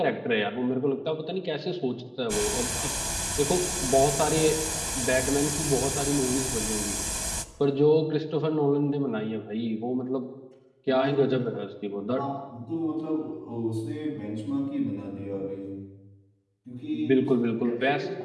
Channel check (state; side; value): identical; both; correlation 1.00